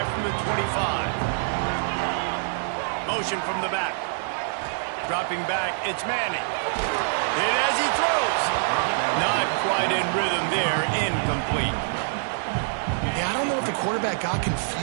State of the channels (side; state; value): left; silent; digital silence